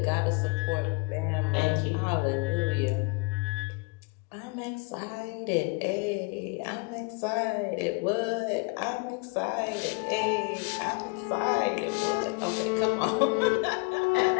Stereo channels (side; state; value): right; quieter; 30.4 dB